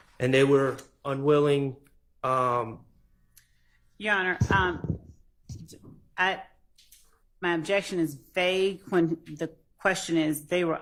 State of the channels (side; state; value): both; identical; correlation 1.00